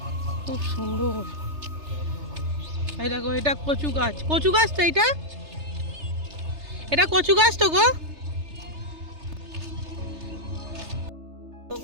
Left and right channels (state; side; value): late; left; 3.3 ms